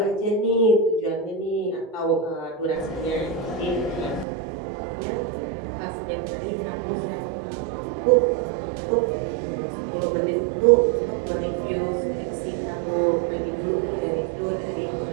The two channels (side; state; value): left; drops out; at 4.2 s